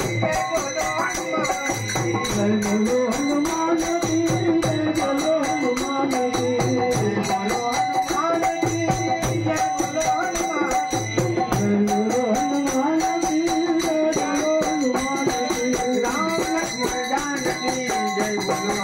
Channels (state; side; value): identical; both; correlation 1.00